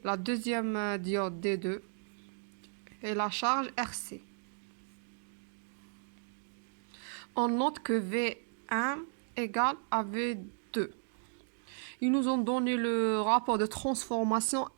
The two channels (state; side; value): silent; left; digital silence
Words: la deuxième diode D2 et la charge RC. On note que V1 égale à V2. Ils nous ont donné le rapport de transformation